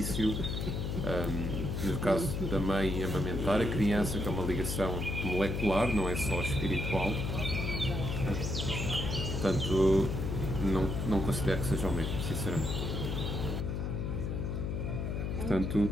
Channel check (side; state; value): left; noise; hum, 2 dB below the sound